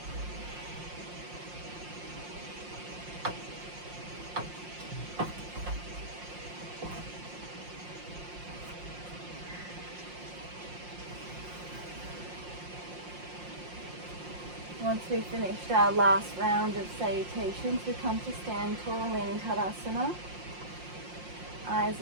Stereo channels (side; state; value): left; late; 5.6 ms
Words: Once we've finished our last round of salutations, we come to stand tall in Tadasana. Eyes